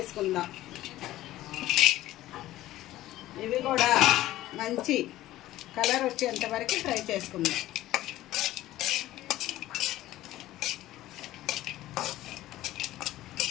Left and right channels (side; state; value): right; quieter; 15.3 dB